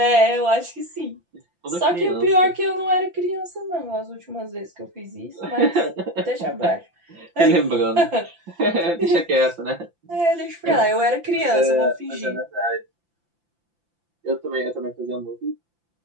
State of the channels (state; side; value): late; left; 5.8 ms